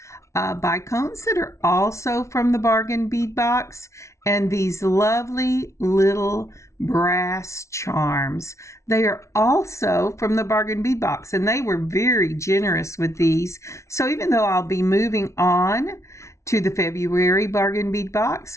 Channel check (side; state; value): right; late; 0.14 ms